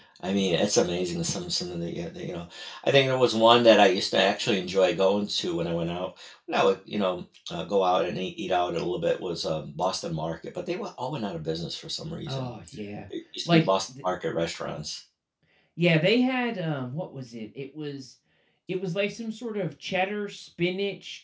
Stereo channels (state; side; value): identical; both; correlation 1.00